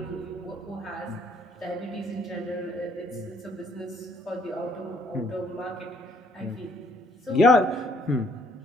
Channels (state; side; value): normal; both; correlation 0.65